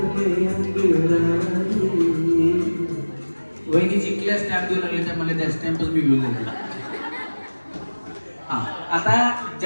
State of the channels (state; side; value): inverted; both; correlation -1.00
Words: में अंगड़ाई. वहिनी जिंकल्या स्टॅम्प देऊ लागले, त्यामुळे त्या स्टॅम्पच मी घेऊन जाते. हा, आता